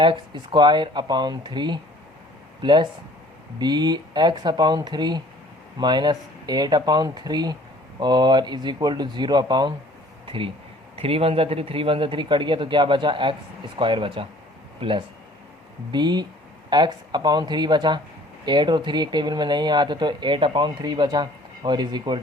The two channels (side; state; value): both; normal; correlation 0.53